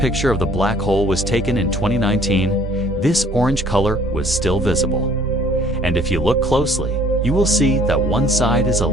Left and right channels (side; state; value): both; normal; correlation 0.56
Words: of the black hole was taken in 2019, this orange color was still visible. And if you look closely, you will see that one side is a